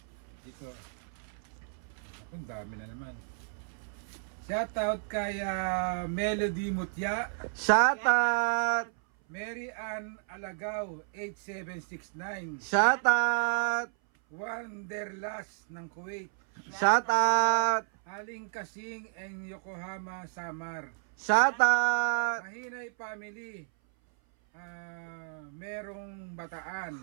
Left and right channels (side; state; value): left; silent; 57 dB below the other